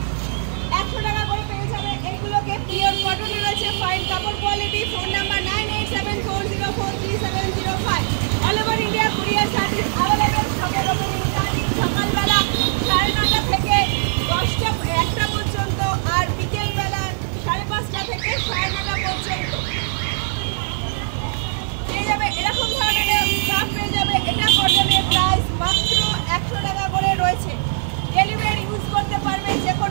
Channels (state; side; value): silent; left; digital silence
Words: পিওর কটন রয়েছে, ফাইন কাপড় quality. Phone number 9874043705। All over India courier service available. সকাল সকালবেলা 9:30 থেকে 1টা পর্যন্ত, আর বিকেলবেলা 5:30 থেকে 9:30 পর্যন্ত পেয়ে যাবে এরকম ধরনের স্টাফ পেয়ে যাবে। এটা কটনের প্রাইস মাত্র 100 টাকা করে রয়েছে। ডেলিভারি ইউজ করতে পারবে, যে